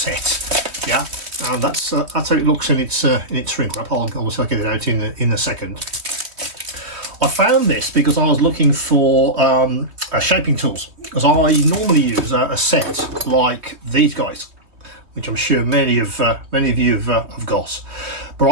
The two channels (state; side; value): late; left; 3.2 ms